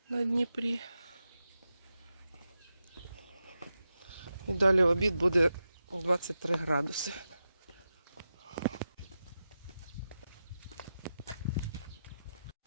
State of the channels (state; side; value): inverted; both; correlation -0.90